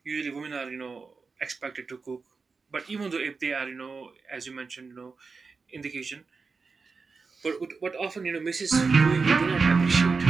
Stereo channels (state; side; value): quieter; left; 4.7 dB